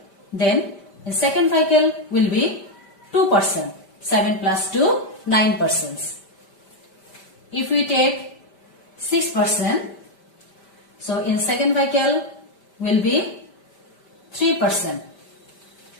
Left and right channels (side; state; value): right; late; 5.1 ms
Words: then in second vehicle will be 2 persons. 7 plus 2, 9 persons. If we take 6 persons, so in second vehicle will be 3 persons.